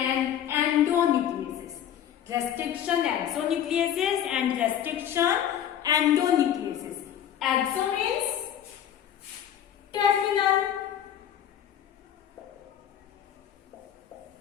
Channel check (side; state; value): right; quieter; 10.1 dB